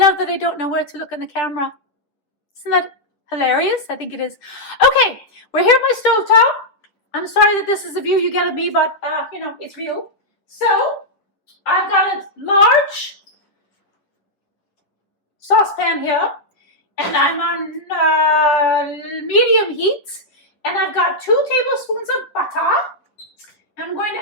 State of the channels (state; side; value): late; right; 9.9 ms